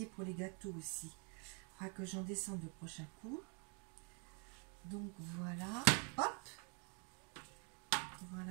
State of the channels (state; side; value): quieter; left; 37.1 dB